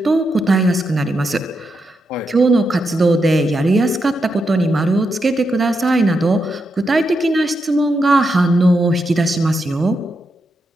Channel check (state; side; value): normal; both; correlation 0.84